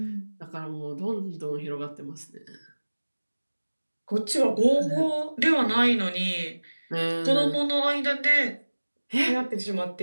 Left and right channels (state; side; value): inverted; both; correlation -1.00